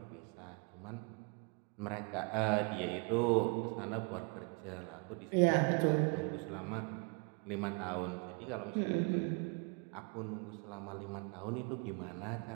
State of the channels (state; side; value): quieter; left; 34.1 dB